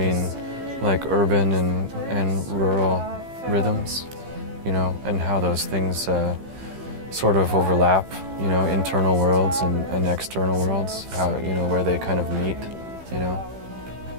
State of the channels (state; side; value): late; left; 15 ms